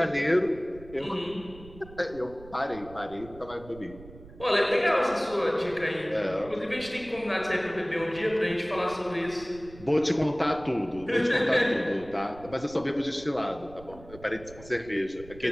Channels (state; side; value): noise; right; rumble, 19 dB below the sound